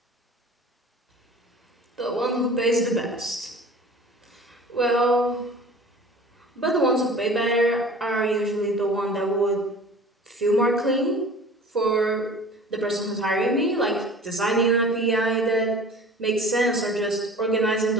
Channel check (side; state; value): both; normal; correlation 0.43